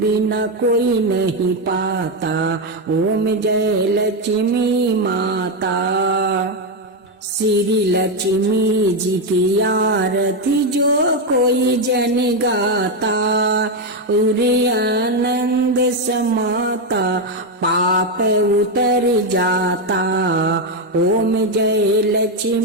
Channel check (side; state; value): both; normal; correlation 0.06